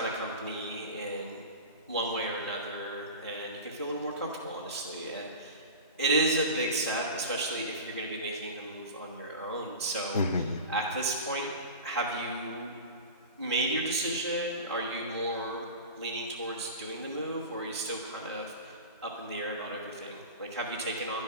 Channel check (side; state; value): both; inverted; correlation -0.30